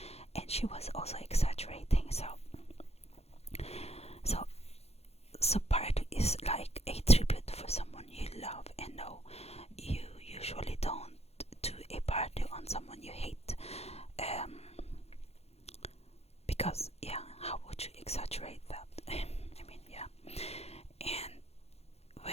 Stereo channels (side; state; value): right; late; 0.30 ms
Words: someone you hate. Um, because yeah, how would you exaggerate that? I mean, yeah. And